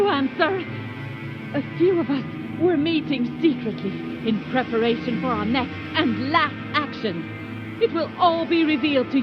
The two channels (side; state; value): both; identical; correlation 1.00